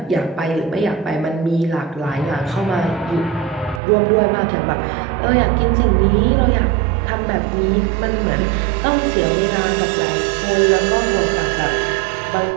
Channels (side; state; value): left; drops out; at 3.8 s